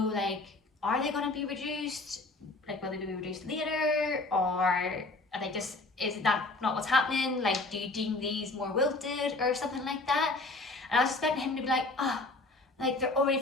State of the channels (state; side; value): quieter; right; 3.2 dB